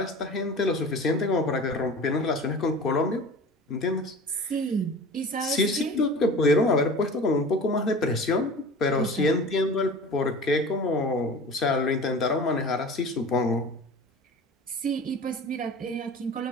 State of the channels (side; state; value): both; normal; correlation 0.38